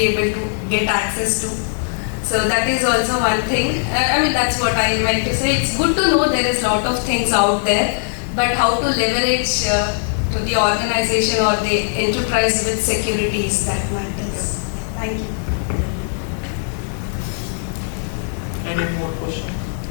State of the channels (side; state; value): right; silent; 66 dB below the other